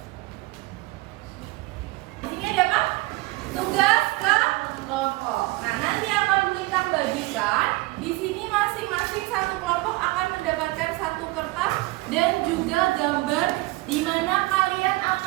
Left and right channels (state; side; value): quieter; left; 21.0 dB